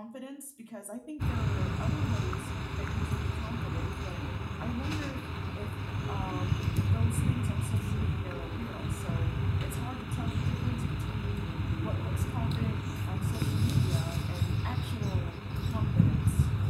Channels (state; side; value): identical; both; correlation 1.00